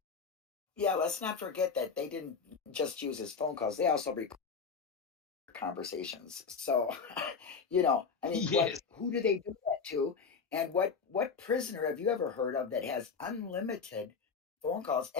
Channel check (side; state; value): right; quieter; 5.5 dB